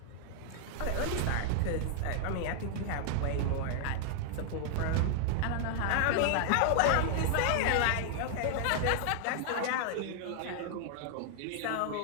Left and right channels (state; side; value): different; both; correlation -0.01